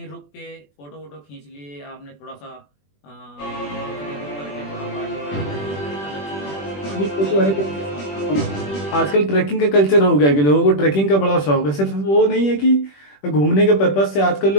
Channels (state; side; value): late; right; 21 ms